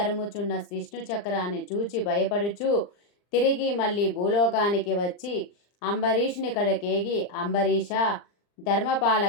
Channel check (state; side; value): late; right; 39 ms